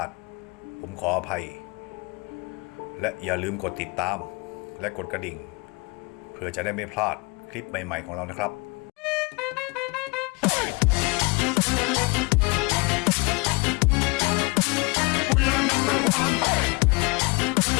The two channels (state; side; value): quieter; right; 27.3 dB